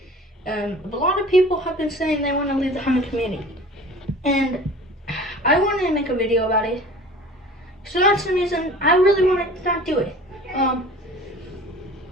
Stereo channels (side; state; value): both; normal; correlation 0.43